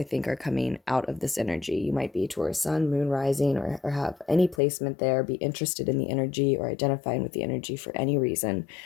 think, are coming out of this energy. You might be Taurus sun, moon rising, or have any placement there, be interested in the energy or identifying with the energy for any reason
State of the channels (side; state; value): right; drops out; at 4.6 s